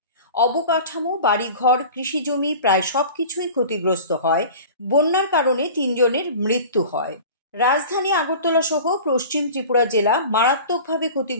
অবকাঠামো, বাড়িঘর, কৃষিজমি প্রায় সবকিছুই ক্ষতিগ্রস্ত হয়। বন্যার কারণে 3 জনের মৃত্যু হয়। রাজধানী আগরতলা সহ পশ্চিম ত্রিপুরা জেলা মারাত্মকভাবে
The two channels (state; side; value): inverted; both; correlation -0.39